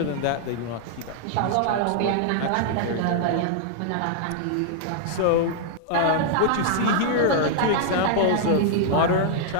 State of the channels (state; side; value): different; both; correlation -0.01